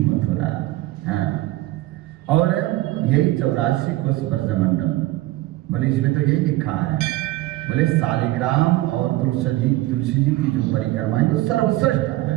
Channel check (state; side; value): quieter; left; 17.3 dB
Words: मथुरा। हाँ, और यही 84 कोष ब्रजमंडल। बोले इसमें तो यही लिखा है, बोले शालिग्राम और तुलसी जी की जो परिक्रमा है वो सर्वश्रेष्ठ